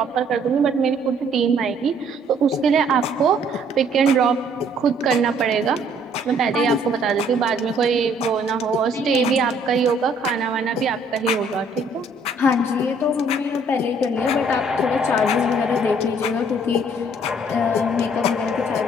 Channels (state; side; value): normal; both; correlation 0.62